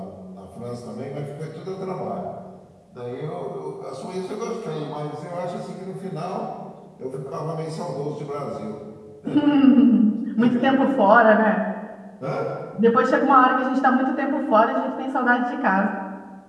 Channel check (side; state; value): both; identical; correlation 1.00